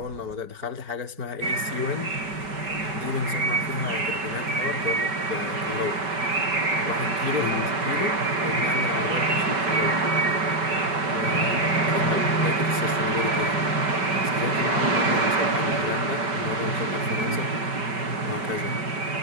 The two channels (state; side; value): late; left; 5.2 ms